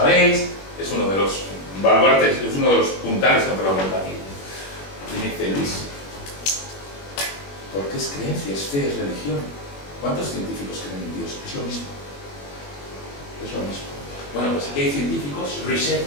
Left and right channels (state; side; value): late; right; 21 ms